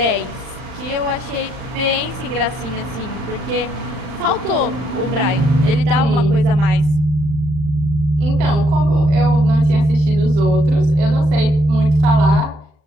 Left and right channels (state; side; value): late; left; 40 ms